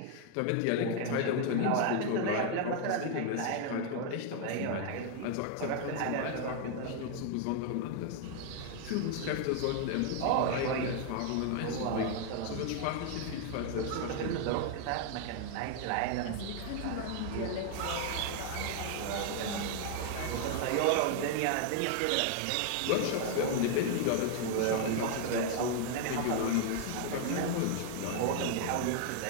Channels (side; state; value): both; different; correlation 0.00